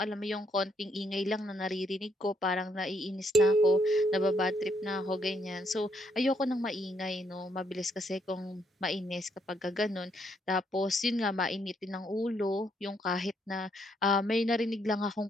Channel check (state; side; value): normal; both; correlation 0.73